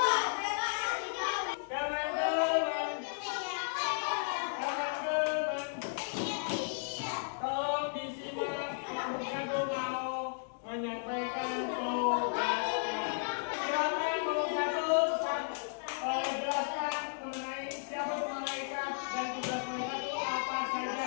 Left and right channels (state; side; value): silent; right; digital silence